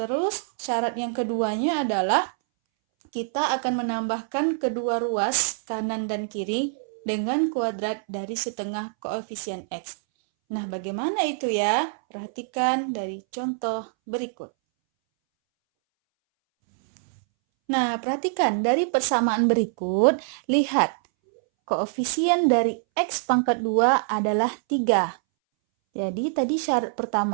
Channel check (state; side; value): silent; left; 62 dB below the other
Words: syarat yang keduanya adalah kita akan menambahkan kedua ruas kanan dan kiri dengan kuadrat dari setengah koefisien x. Nah, bagaimana itu ya? Perhatikan dari contoh berikut. Nah, perhatikan dari persamaan berikut, lihat koefisien dari x pangkat 2 adalah 3. Jadi tadi syarat